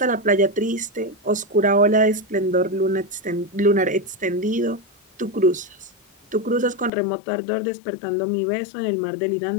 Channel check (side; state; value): right; drops out; at 6.9 s